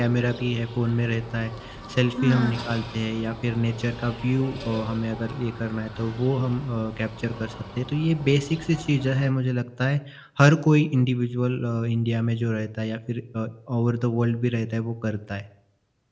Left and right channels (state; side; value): identical; both; correlation 1.00